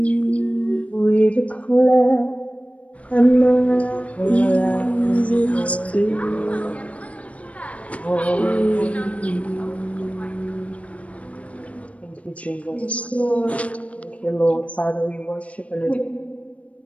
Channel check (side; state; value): right; late; 0.065 ms